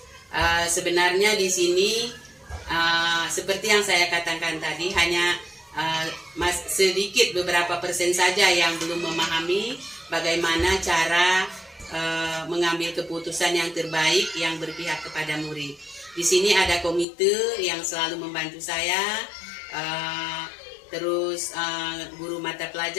Sebenarnya di sini seperti yang saya katakan tadi, hanya sedikit beberapa persen saja yang belum memahami bagaimana cara mengambil keputusan yang terbaik yang berpihak kepada murid. Di sini ada komite yang selalu membantu saya, terus guru mata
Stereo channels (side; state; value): right; drops out; at 17.1 s